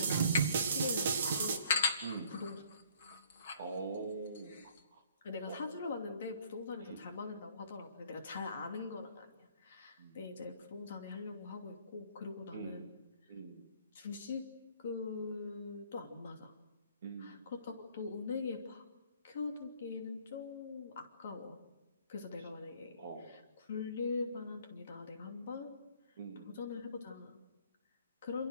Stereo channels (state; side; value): inverted; both; correlation -0.59